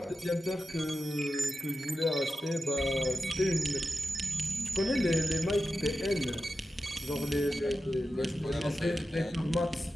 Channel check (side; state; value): both; normal; correlation 0.91